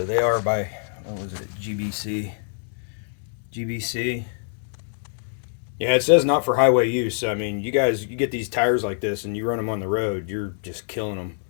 they are by, what was it, GBC. Yeah, it says not for highway use. I mean, you get these tires like this and you run them on the road, you're just killing them.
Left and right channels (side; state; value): right; silent; digital silence